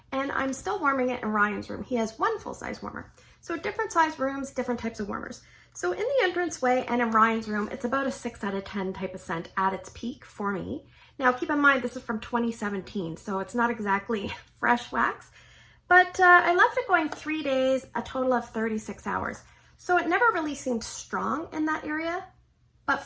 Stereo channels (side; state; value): both; identical; correlation 1.00